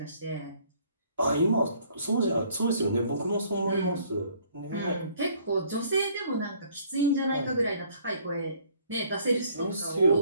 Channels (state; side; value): inverted; both; correlation -0.60